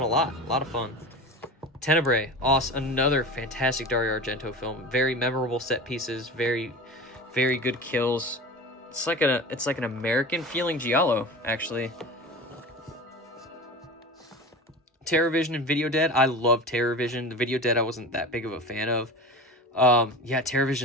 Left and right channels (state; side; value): normal; both; correlation 0.31